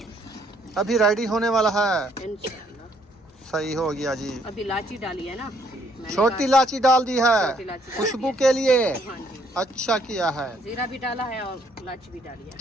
अभी रेडी होने वाला है। इंशाल्लाह। सही हो गया जी। अभी इलायची डाली है ना, मैंने छोटी कहा- इलायची डाल दी है छोटी इलायची डाल खुशबू दी के लिए। है। हाँ जी, अच्छा किया है, जीरा भी डाला है और इलायची भी डाली है।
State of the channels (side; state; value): both; normal; correlation 0.67